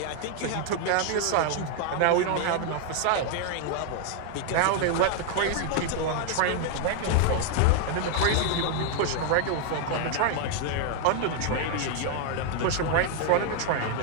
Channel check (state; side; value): different; both; correlation 0.00